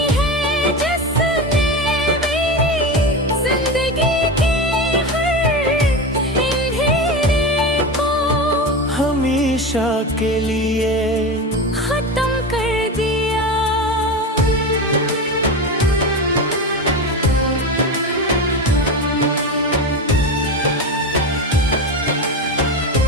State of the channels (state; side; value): normal; both; correlation 0.22